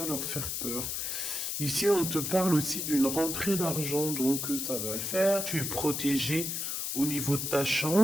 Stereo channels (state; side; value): noise; left; hiss, 2 dB below the sound